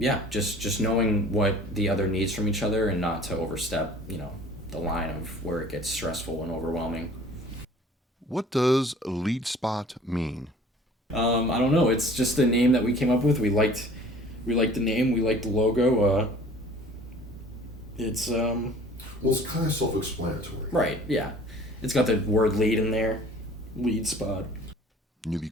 just knowing what the other needs from each other and not to overstep, the line of where it gets stressful and overwhelming. What does lead spot mean? I don't know. It's just a name that we came up with. We liked the name. We liked the logo. It's Well, it's kind of self-explanatory. right. Yeah, it's got the word lead in there. Lead spot. Newbie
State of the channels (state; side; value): normal; both; correlation 0.49